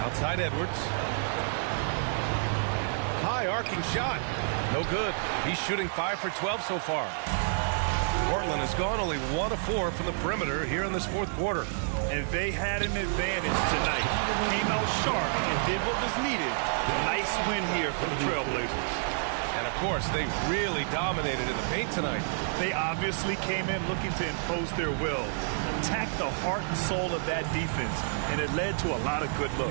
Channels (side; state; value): left; silent; 58 dB below the other